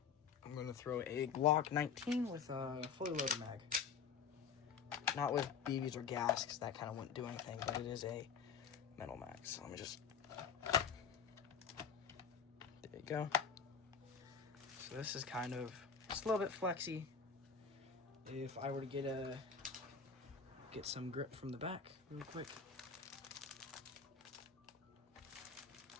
I'm going to throw a Glock 19 with a fully loaded mag. Not with BBs or gas, because that kind of wouldn't do anything, but it is a metal mag. So let me just, there you go. So this is kind of, just a little bit flexy. If I were to get some grip from the back real quick.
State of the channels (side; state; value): right; quieter; 6.4 dB